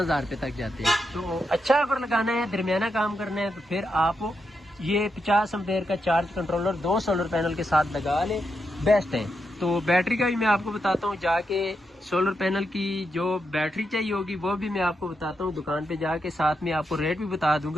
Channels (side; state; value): both; normal; correlation 0.84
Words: रुपये तक जाते हैं। तो अच्छा अगर लगाना है, दरमियाना काम करना है, तो फिर आप ये 50 एम्पेयर का चार्ज कंट्रोलर 2 सोलर पैनल के साथ लगा लें, बेस्ट है। तो बैटरी का भी मैं आपको बताता हूँ, जाके सोलर पैनल की जो बैटरी चाहिए होगी वो भी मैं आपको बताता हूँ दुकान पे जाके, साथ में आपको रेट भी बता